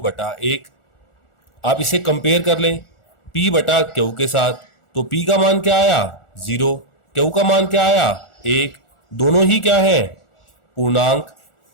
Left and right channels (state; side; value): late; right; 1.4 ms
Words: बटा 1। आप इसे कंपेयर कर लें P बटा Q के साथ, तो P का मान क्या आया? 0। Q का मान क्या आया? 1। दोनों ही क्या है? पूर्णांक।